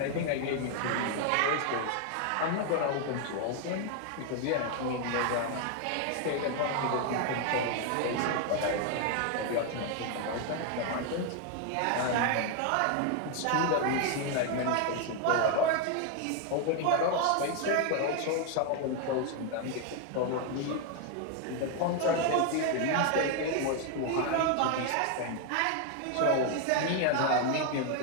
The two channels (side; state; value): both; different; correlation 0.01